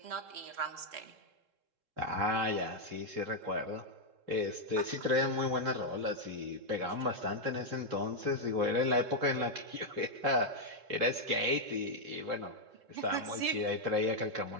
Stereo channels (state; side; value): late; left; 3.7 ms